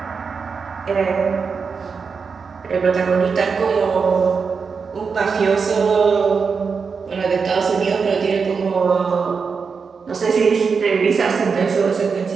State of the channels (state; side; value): quieter; left; 5.4 dB